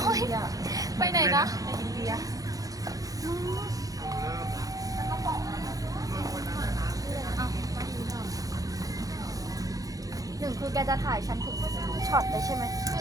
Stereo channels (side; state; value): left; late; 0.17 ms